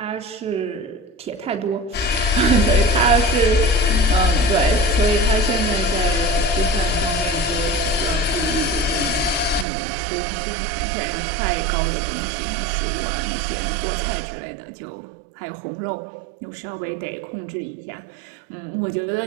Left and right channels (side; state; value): left; drops out; at 9.7 s